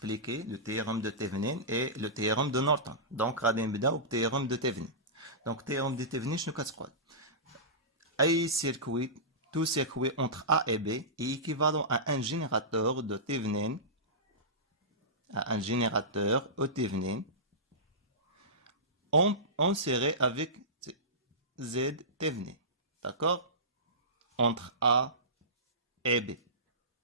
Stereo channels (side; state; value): both; normal; correlation -0.19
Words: le théorème de Thevenin et le théorème de Norton. Donc, غادي نبداو بالتhéorème de Thevenin. Donc, théorème de Thevenin, شنو كتقول؟ أي circuit, tout circuit entre A et B est équivalent à un générateur de Thevenin, à un générateur E Thevenin, inséré avec Z Thevenin. D'accord? Entre A et B.